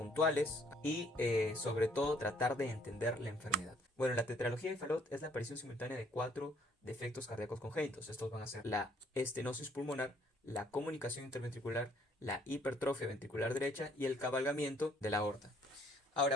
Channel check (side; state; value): both; normal; correlation 0.63